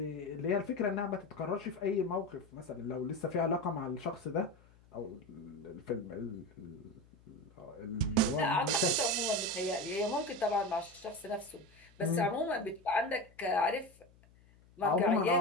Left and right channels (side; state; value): left; noise; hum, 27 dB below the sound